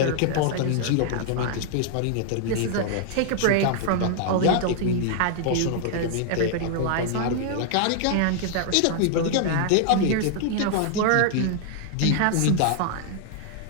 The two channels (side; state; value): both; different; correlation 0.00